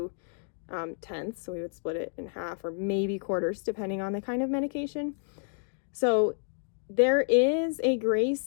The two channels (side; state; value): right; silent; digital silence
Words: tenths. So we would split it in half or maybe quarters, depending on the kind of medication. So there is a